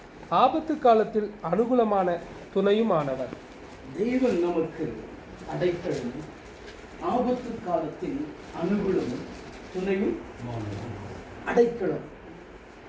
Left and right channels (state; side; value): identical; both; correlation 1.00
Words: ஆபத்து காலத்தில் அனுகூலமான துணையுமானவர். தேவன் நமக்கு அடைக்கலமும் ஆபத்து காலத்தில் அனுகூலமும் துணையும். அடைக்கலம்,